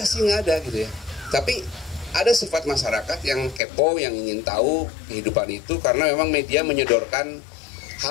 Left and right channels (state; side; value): drops out; right; at 3.6 s